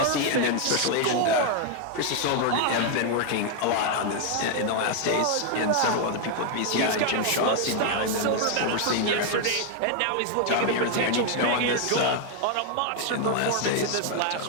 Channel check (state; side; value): different; both; correlation 0.00